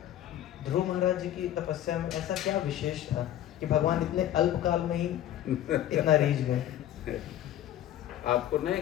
ध्रुव महाराज जी की तपस्या में ऐसा क्या विशेष था कि भगवान इतने अल्पकाल में ही इतना रीझ गए? आपको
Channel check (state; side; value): quieter; right; 12.1 dB